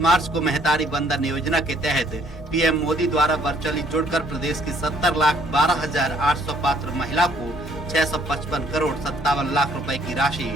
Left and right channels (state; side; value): normal; both; correlation 0.63